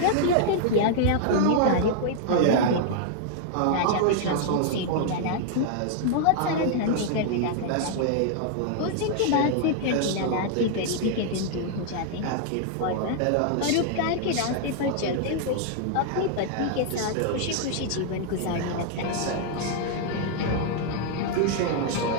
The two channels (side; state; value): both; different; correlation 0.00